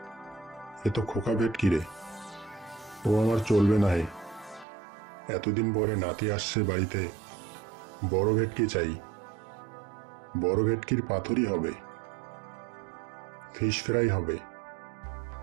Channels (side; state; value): left; drops out; at 4.7 s